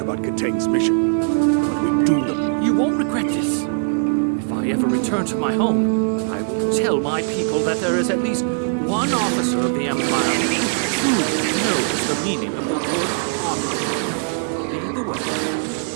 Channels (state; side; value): silent; left; digital silence